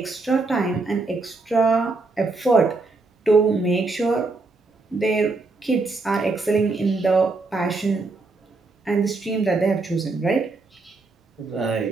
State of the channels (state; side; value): quieter; left; 3.6 dB